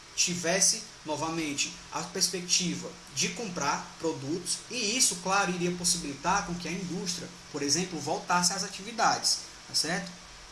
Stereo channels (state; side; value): identical; both; correlation 1.00